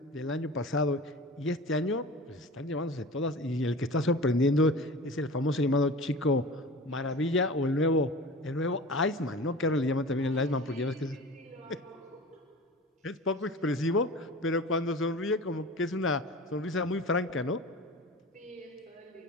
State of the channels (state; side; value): normal; both; correlation 0.36